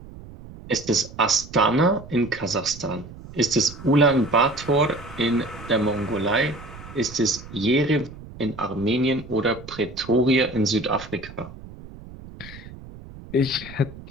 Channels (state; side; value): noise; right; rumble, 16 dB below the sound